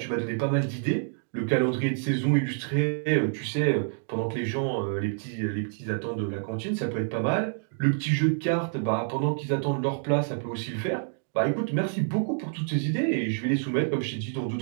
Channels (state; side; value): silent; left; digital silence